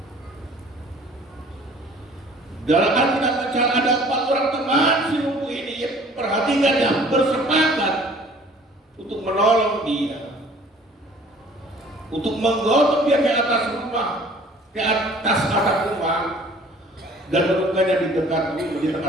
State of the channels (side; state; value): both; normal; correlation 0.52